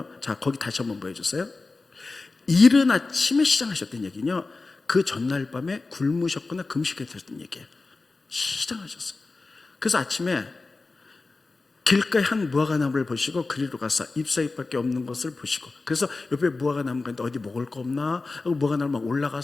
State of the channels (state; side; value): quieter; right; 3.7 dB